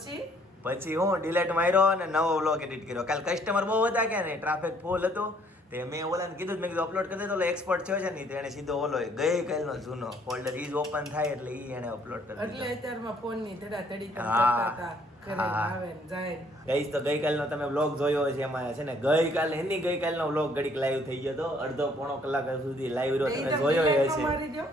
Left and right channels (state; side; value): normal; both; correlation 0.63